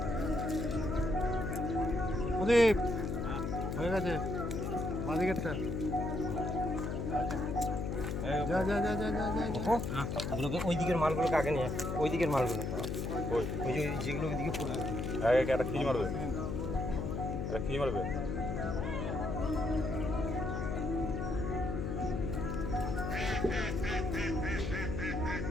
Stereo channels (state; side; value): noise; left; hum, 2 dB below the sound